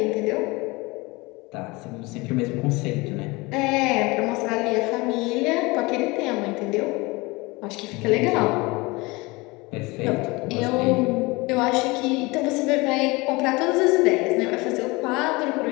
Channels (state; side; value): quieter; right; 24.0 dB